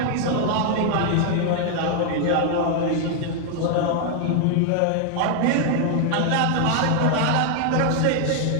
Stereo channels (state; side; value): different; both; correlation 0.00